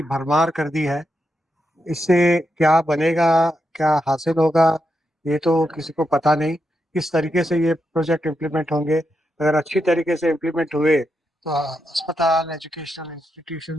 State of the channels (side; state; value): both; normal; correlation 0.85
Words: भरमार कर दी है। इससे क्या बनेगा, क्या हासिल होगा, ये तो किसी को पता नहीं। किस तरीके से ये प्रोजेक्ट इम्प्लीमेंट होंगे। अगर अच्छी तरीके से इम्प्लीमेंट हुए तो अस्पताल, एजुकेशनल